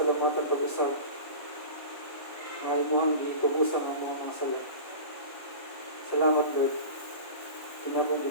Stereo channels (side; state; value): right; late; 1.1 ms